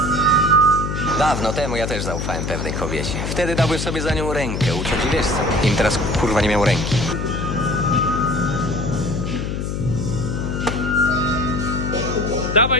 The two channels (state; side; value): noise; left; hum, 3 dB below the sound